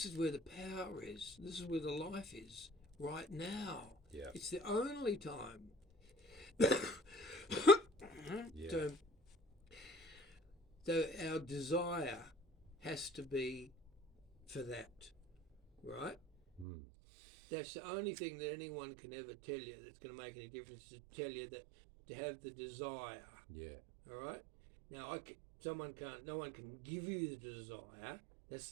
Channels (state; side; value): drops out; left; at 16.7 s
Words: is where the power is. This is where the life is, right now. Yeah. It's the only time. Yeah. So our desire has to be for that, right? That's the only thing that anyone can ever tell you that's going to make any difference, to tell you that to have the desire. Yeah. All right. Now, no one can give you the desire. That's